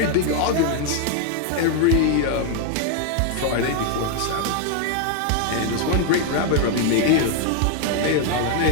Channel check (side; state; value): both; different; correlation 0.01